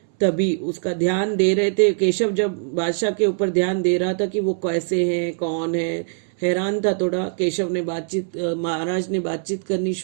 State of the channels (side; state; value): left; silent; 64 dB below the other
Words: तभी उसका ध्यान दे रहे थे। केशव जब बादशाह के ऊपर ध्यान दे रहा था कि वो कैसे हैं, कौन है, हैरान था थोड़ा। केशव ने महाराज ने बातचीत करनी